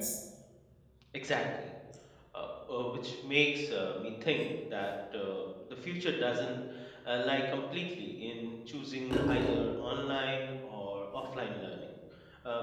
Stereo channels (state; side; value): identical; both; correlation 1.00